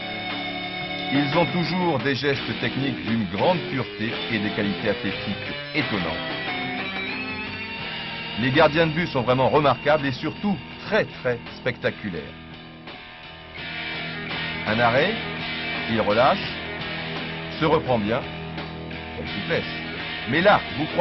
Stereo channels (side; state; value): both; identical; correlation 1.00